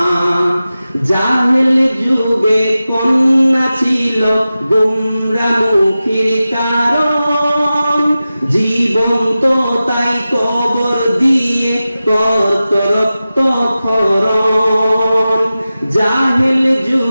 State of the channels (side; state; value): both; inverted; correlation -0.94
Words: জাহেল যুগে কন্যা ছিল গুমরামুখীর কারণ, জীবন্ত তাই কবর দিয়ে কত রক্ত ক্ষরণ। জাহেল